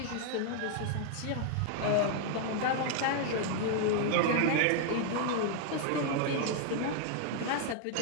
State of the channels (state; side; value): different; both; correlation 0.00